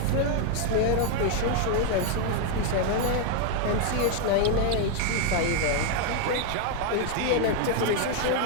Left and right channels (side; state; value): both; different; correlation 0.00